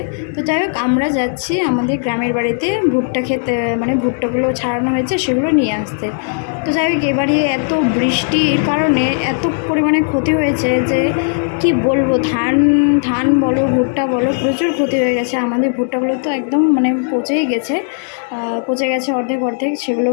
তো যাই হোক, আমরা যাচ্ছি আমাদের গ্রামের বাড়িতে ভুট্টা খেতে, মানে ভুট্টাগুলো ছাড়ানো হয়েছে সেগুলো নিয়ে আসতে। তো যাই হোক, এবারে এত বৃষ্টির কারণে এত পরিমাণে ক্ষতি হয়েছে যে কি বলবো। ধান ধান বলো, ভুট্টা বলো, প্রচুর ক্ষতি হয়ে গেছে। আমাদের ভুট্টাগুলো তো একদম মানে পচেই গেছে, পচে গেছে অর্ধেক অর্ধেক। সেগুলো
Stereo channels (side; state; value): right; silent; digital silence